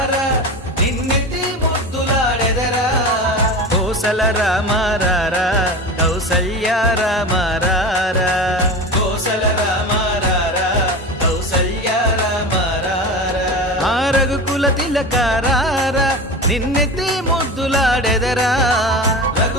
నిన్నెత్తి ముద్దులాడెదరా కోసల రామారారా కౌసల్య రామారారా కోసల రామారారా కౌసల్య రామారారా ఆ రఘుకుల తిలకారారా నిన్నెత్తి ముద్దులాడెదరా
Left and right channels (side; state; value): both; normal; correlation 0.28